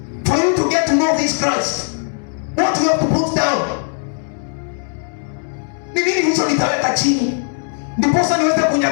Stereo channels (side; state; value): right; silent; digital silence